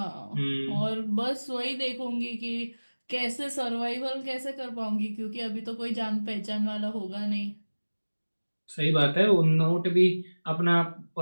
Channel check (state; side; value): inverted; both; correlation -1.00